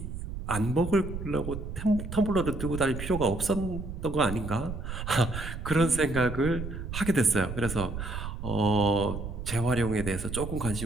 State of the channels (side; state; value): right; noise; rumble, 7 dB below the sound